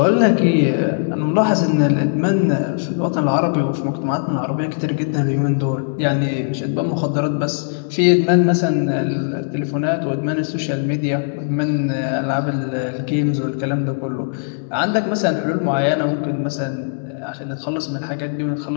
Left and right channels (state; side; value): silent; right; digital silence